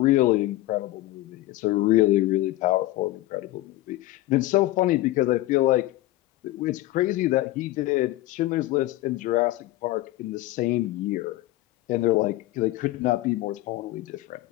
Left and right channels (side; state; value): right; quieter; 16.9 dB